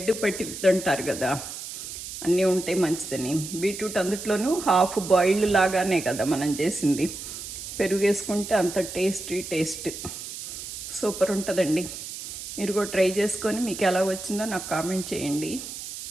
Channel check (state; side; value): noise; right; hiss, 9 dB below the sound